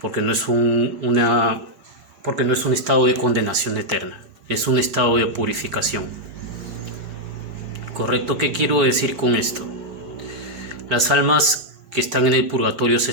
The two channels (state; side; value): late; left; 4.1 ms